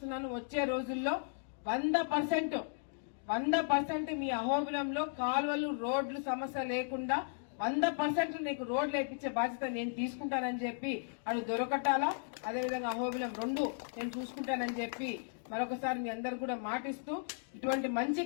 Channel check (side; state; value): right; silent; digital silence